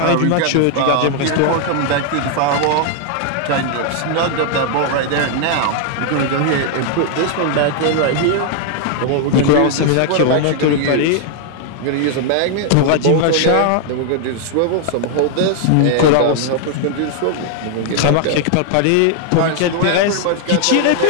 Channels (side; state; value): both; different; correlation 0.00